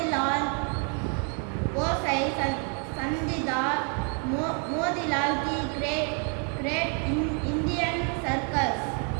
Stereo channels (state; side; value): quieter; left; 39.6 dB